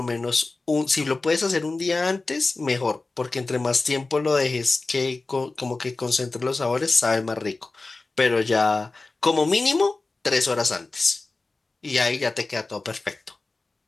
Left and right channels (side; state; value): right; quieter; 3.5 dB